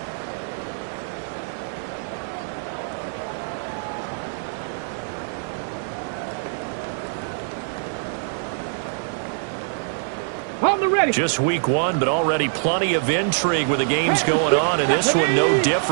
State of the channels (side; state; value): left; silent; digital silence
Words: Ready. Just week 1, but already plenty of intrigue with the games going on, and this one no